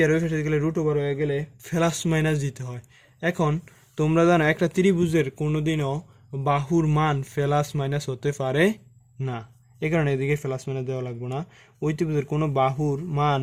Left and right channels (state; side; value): identical; both; correlation 1.00